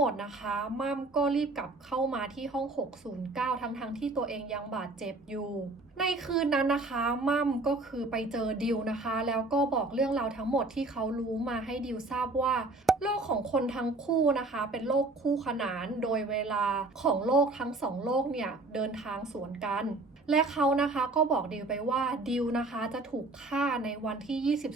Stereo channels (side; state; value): left; quieter; 3.1 dB